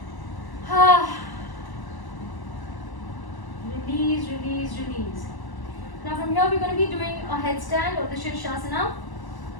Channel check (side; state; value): right; late; 1.0 ms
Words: your knees. Now from here we're going to be doing a headstand or the Shirshasana.